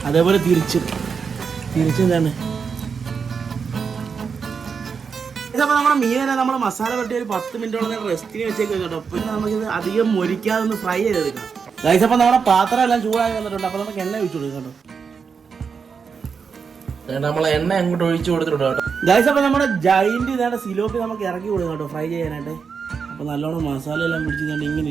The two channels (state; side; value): quieter; left; 5.9 dB